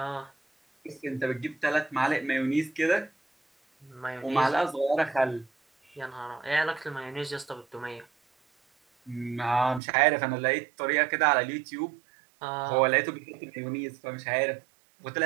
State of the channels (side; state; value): left; drops out; at 9.8 s